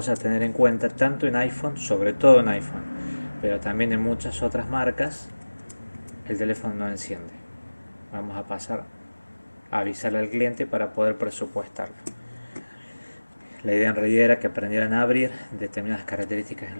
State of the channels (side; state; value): both; inverted; correlation -1.00